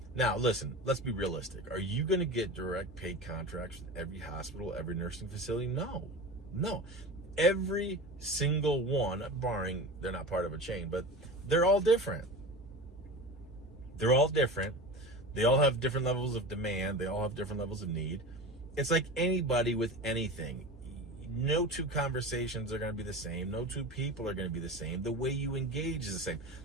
Now, listen, let's be realistic. Are you going to get direct paid contracts with every hospital, every nursing facility? No. Every single one, barring they're not part of a chain, but they're all different. They all have different levels of demand. They all have different levels of need. It's like anybody with anything. No two conversations are going to be the same. No two people are going to be the same. The way you engage is the same.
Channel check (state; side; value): normal; both; correlation 0.31